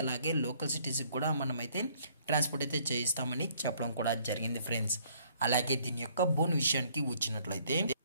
అలాగే లోకల్ సిటీస్కి కూడా మనమైతే ట్రాన్స్పోర్ట్ అయితే చేయిస్తామని చెప్పడం కూడా జరిగింది ఫ్రెండ్స్. అలాగే దీని యొక్క బోన్ విషయానికి వచ్చినట్లయితే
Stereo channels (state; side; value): inverted; both; correlation -0.62